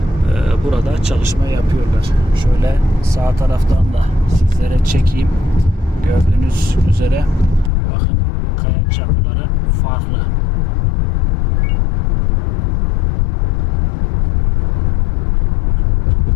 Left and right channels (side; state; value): right; drops out; at 7.7 s